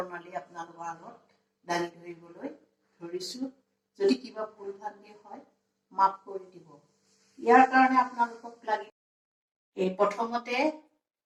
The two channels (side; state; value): both; identical; correlation 1.00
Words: আপোনালোকৰ আগত দাঙি ধৰিবলৈ ধৰিছোঁ। যদি কিবা ভুল ভ্ৰান্তি হয় মাফ কৰি দিব। ইয়াৰ কাৰণে আপোনালোকক লাগিব প্ৰথমতে